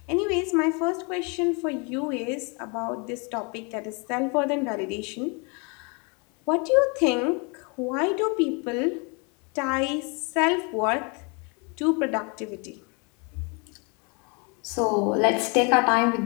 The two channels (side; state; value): right; quieter; 32.7 dB